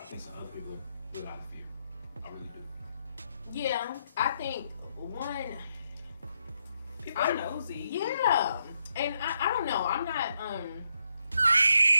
think some other people do it out of fear. I really do. Yeah, I think one. People are nosy. Yeah, and I don't know. I'm not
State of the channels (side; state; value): both; inverted; correlation -0.79